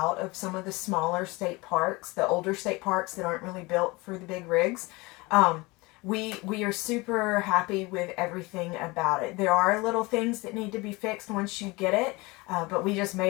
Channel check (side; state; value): right; quieter; 23.8 dB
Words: of some of the smaller state parks, the older state parks that aren't really built for the big rigs. we are super happy with everything about it. There are little things that need to be fixed once you get it, but we just